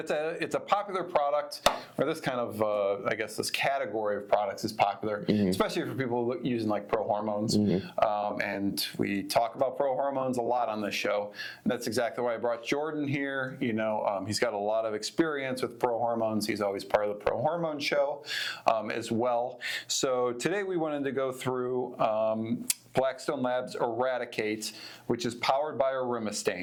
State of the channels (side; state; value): both; identical; correlation 1.00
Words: a popular product, or this kind of, I guess this category of products is popular, especially for people using like pro-hormones. And we talk about pro-hormones a lot on this show. And that's exactly why I brought Jordan here. You know, he's got a lot of experience with pro-hormones. He's always part of the pro-hormone show as well. So today we wanted to go through Blackstone Labs Eradicate, which is powered by